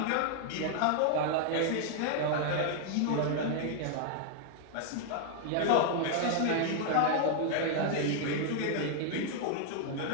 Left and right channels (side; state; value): both; different; correlation -0.01